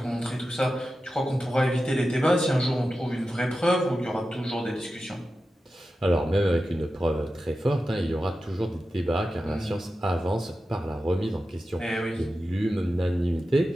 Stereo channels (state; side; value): normal; both; correlation 0.92